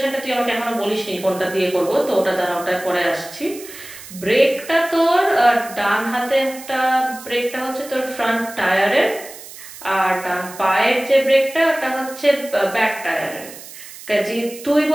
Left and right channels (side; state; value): right; noise; hiss, 15 dB below the sound